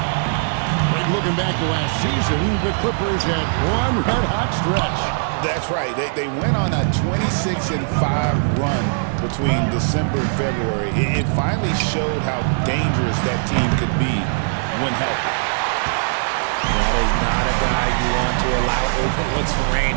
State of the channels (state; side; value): silent; left; digital silence